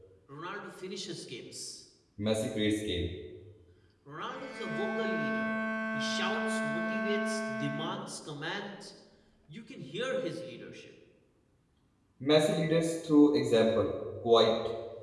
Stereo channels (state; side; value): identical; both; correlation 1.00